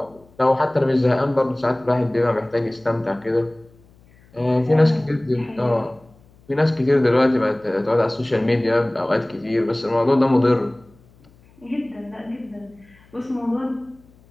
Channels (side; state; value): left; noise; hum, 29 dB below the sound